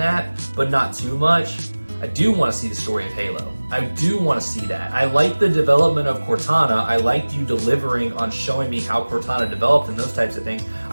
but not too much. I do want to see the story of Halo. I do want to see that. I like the development of Cortana. I liked you delivering on showing me how Cortana developed and those types of things.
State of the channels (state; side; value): inverted; both; correlation -1.00